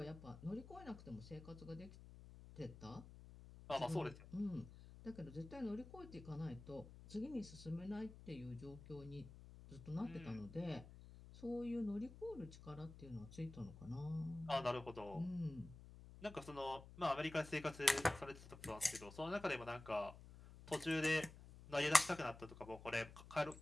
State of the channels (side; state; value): left; noise; hum, 16 dB below the sound